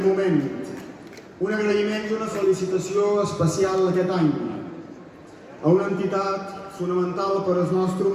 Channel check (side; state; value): both; identical; correlation 1.00